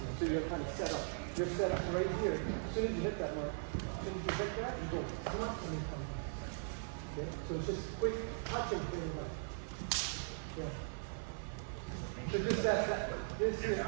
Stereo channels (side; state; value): left; silent; 51 dB below the other